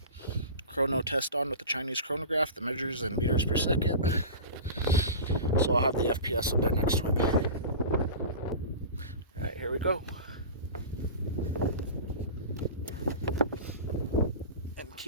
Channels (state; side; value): inverted; both; correlation -0.31